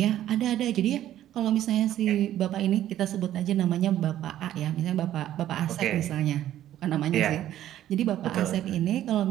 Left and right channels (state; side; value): quieter; left; 12.4 dB